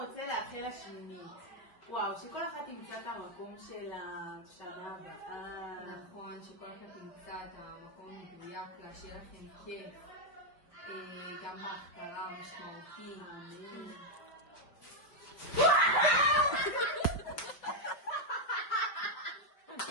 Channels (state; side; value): late; right; 5.0 ms